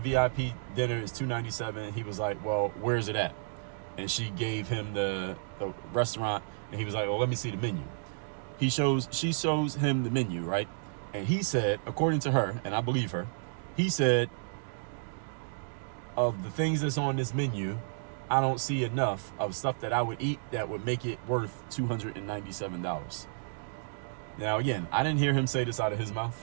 dinner. It's $297. He was like, well, where's it at? And she gave him the restaurant. And he was like, well, let me see the menu. She shows him the menu, right? And he said, according to her, and I believe her, he said, of the things that's on this menu, I don't see enough of stuff that I would eat that would make it worth $297. Now, again, I didn't hear him say this out of his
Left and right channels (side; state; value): left; silent; digital silence